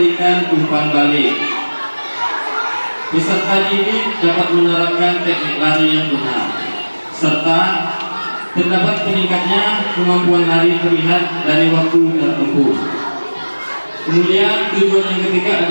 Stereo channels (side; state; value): both; inverted; correlation -1.00